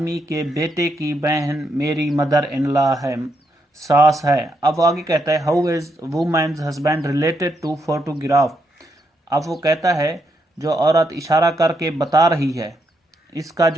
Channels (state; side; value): normal; both; correlation 0.79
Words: के बेटे की बहन मेरी mother-in-law है, सास है। अब आगे कहता है, "How is woman's husband related to photograph?" अब वो कहता है, जो औरत इशारा करके बता रही है, इसका